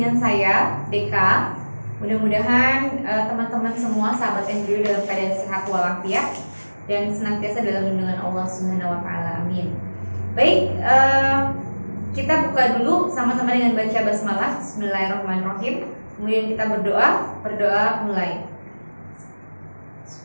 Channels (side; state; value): both; inverted; correlation -1.00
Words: saya, Deka. Mudah-mudahan teman-teman semua sahabat Embryo dalam keadaan sehat walafiat dan senantiasa dalam lindungan Allah Subhanahu wa taala. Amin. Baik, kita buka dulu sama-sama dengan baca basmalah. Bismillahirrahmanirrahim. Kemudian kita berdoa mulai.